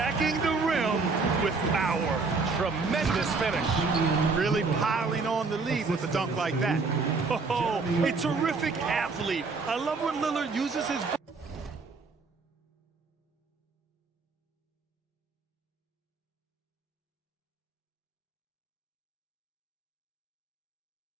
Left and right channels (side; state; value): left; quieter; 4.2 dB